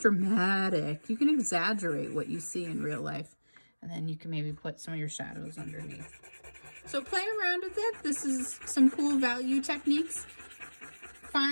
You can exaggerate what you see in real life. And then you can maybe put some of your shadows underneath. So play around with it. This is some cool value techniques.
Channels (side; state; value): both; inverted; correlation -1.00